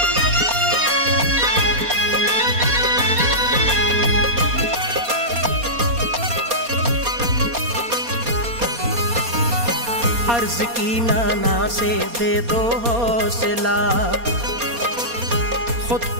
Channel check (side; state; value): left; late; 4.2 ms